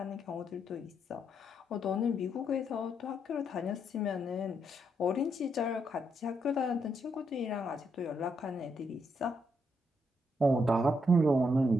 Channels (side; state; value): both; normal; correlation 0.77